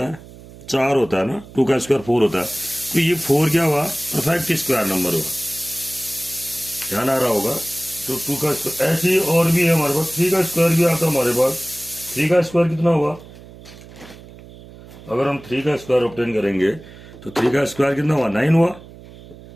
चार होता है ना। टू का स्क्वायर फोर होता है। तो ये फोर क्या हुआ? परफेक्ट स्क्वायर नंबर हुआ। ध्यान आ रहा होगा। तो टू का स्क्वायर ऐसे ही और भी है हमारे पास। थ्री का स्क्वायर भी आता है हमारे पास। थ्री का स्क्वायर कितना हुआ? अगर हम थ्री का स्क्वायर ऑब्टेन करेंगे तो थ्री का स्क्वायर कितना हुआ? नाइन हुआ।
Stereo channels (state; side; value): noise; right; hum, 19 dB below the sound